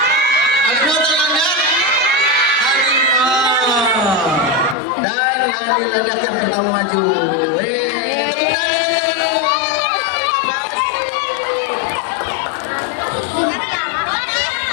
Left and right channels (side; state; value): right; drops out; at 4.8 s